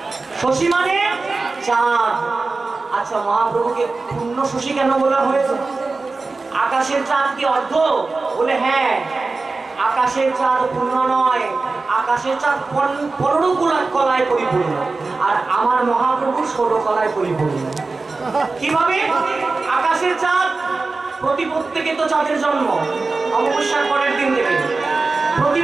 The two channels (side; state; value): left; quieter; 3.8 dB